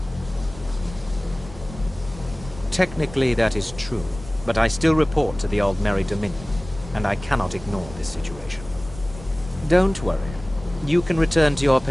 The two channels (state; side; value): normal; both; correlation 0.98